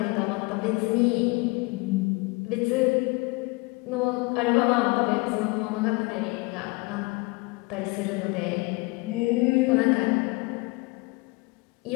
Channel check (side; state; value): right; quieter; 25.9 dB